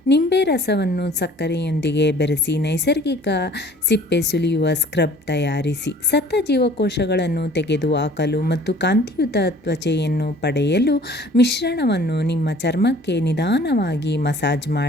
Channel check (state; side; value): normal; both; correlation 0.51